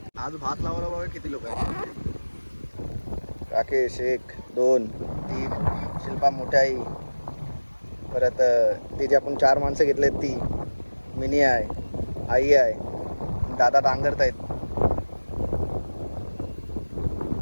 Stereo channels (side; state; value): both; inverted; correlation -1.00